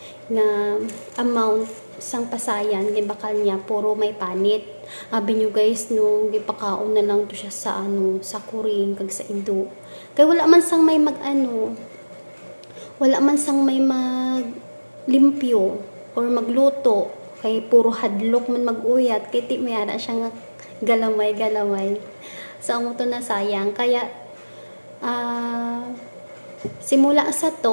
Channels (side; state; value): both; inverted; correlation -1.00